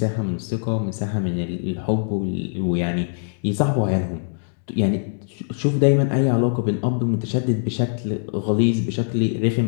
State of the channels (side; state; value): right; silent; digital silence